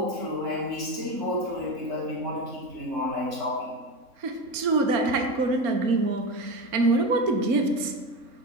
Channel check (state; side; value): late; left; 3.6 ms